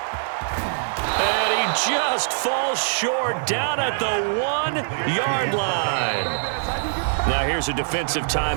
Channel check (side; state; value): left; silent; 62 dB below the other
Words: And he just falls short down at the 1-yard line. Now here's a defensive